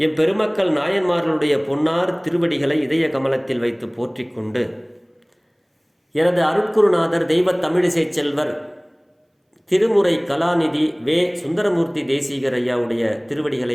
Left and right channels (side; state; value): both; identical; correlation 1.00